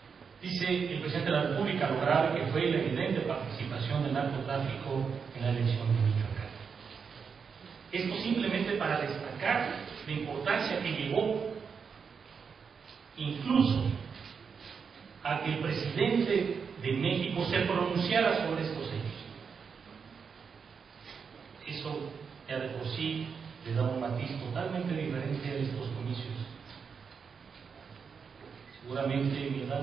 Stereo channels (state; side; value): quieter; left; 6.0 dB